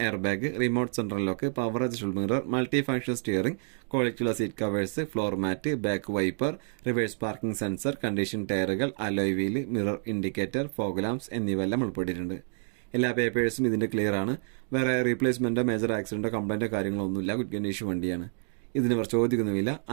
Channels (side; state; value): left; silent; 59 dB below the other